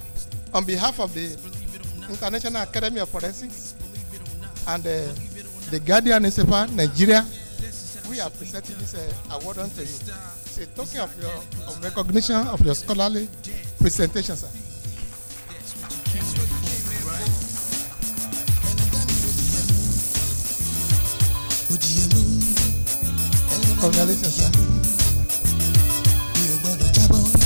on behalf of the International Academy of Forensics and the Guardian newspaper, Nigeria, we are presenting this award unto you. It's a token of your recognition of your scholarly presentation, sir. Congratulations, sir.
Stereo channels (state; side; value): inverted; both; correlation -1.00